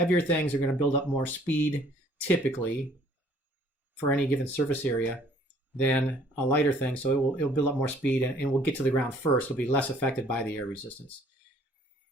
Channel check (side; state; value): both; normal; correlation 0.58